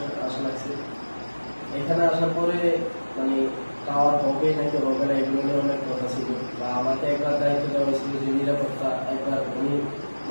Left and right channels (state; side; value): inverted; both; correlation -1.00